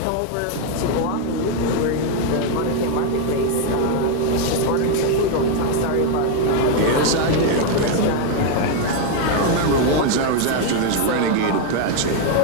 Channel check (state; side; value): different; both; correlation 0.01